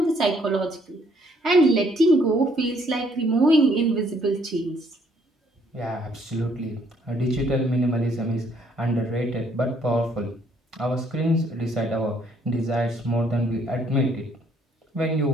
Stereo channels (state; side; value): normal; both; correlation 0.66